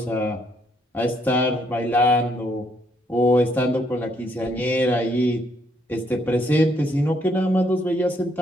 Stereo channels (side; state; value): both; normal; correlation 0.71